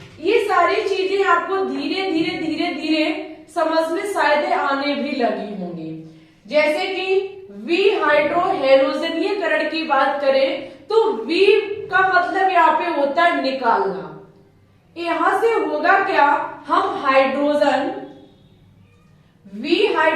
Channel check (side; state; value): both; identical; correlation 1.00